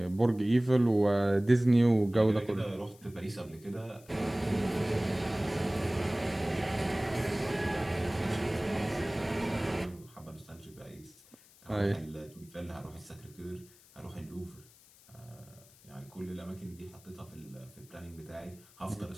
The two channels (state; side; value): noise; left; hiss, 25 dB below the sound